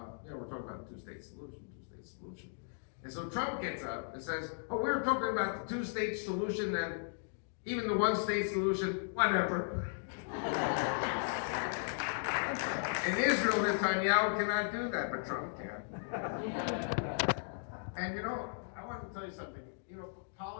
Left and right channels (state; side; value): silent; right; digital silence